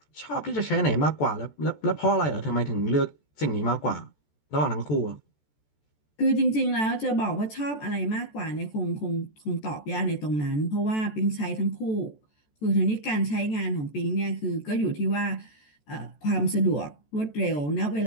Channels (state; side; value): late; right; 14 ms